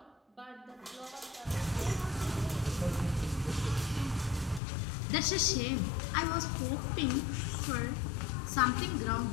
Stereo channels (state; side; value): drops out; right; at 4.6 s